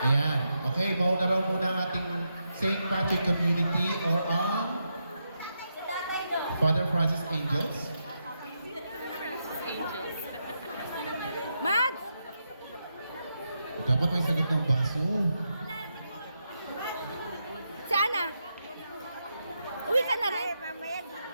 Okay, mauna raw muna ang ating St. Patrick Community or ang Father Francis Angels. Mads! Dapat may sagot ng baso. Si Ana? Uwi ka na rin?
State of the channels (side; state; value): both; inverted; correlation -0.84